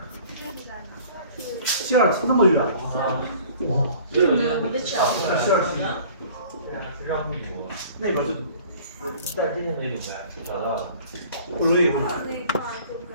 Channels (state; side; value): inverted; both; correlation -0.49